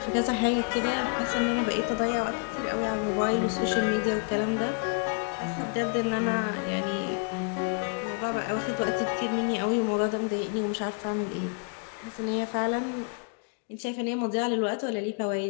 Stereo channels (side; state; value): right; quieter; 36.8 dB